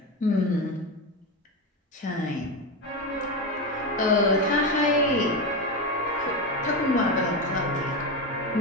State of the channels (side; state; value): both; normal; correlation 0.15